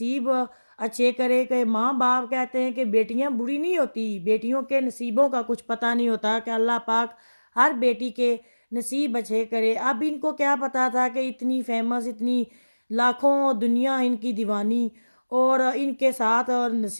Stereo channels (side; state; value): both; inverted; correlation -1.00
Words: अच्छे करे। कि माँ बाप कहते हैं कि बेटियां बुरी नहीं होती, बेटियों के नसीबों का कुछ पता नहीं होता, कि अल्लाह पाक हर बेटी के नसीब अच्छे करे। अब इनको क्या पता था कि इतनी फेमस, इतनी लाखों दुनिया इनकी दीवानी, और इनके साथ और